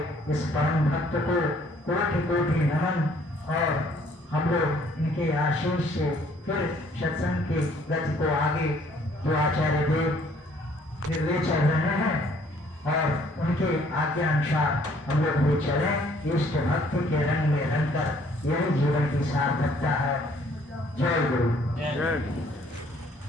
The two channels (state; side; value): normal; both; correlation 0.61